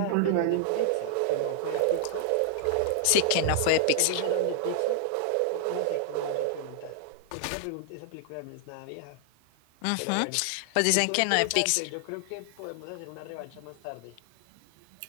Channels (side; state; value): both; different; correlation 0.00